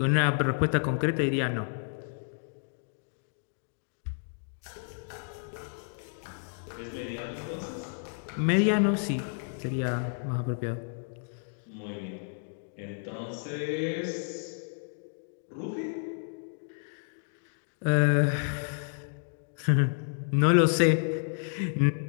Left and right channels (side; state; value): right; silent; digital silence